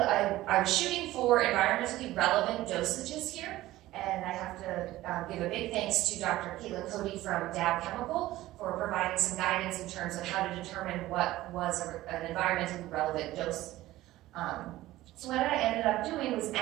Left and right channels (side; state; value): left; quieter; 16.3 dB